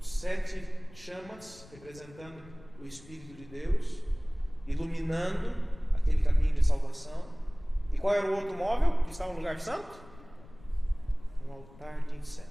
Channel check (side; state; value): left; noise; rumble, 21 dB below the sound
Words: 7 chamas representando o Espírito de Deus, iluminando aquele caminho de salvação. E qual era o outro móvel que estava no lugar santo? Um altar de